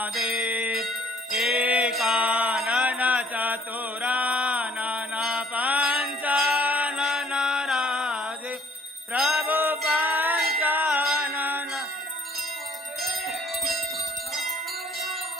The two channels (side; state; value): both; normal; correlation 0.59